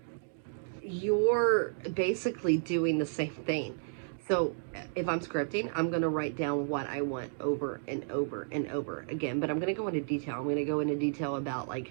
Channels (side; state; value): left; silent; digital silence